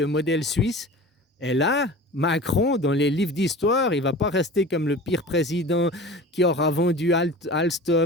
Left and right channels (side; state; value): both; normal; correlation 0.37